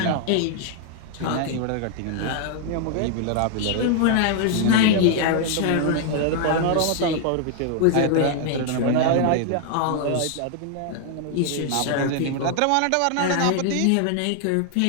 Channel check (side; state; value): both; different; correlation 0.00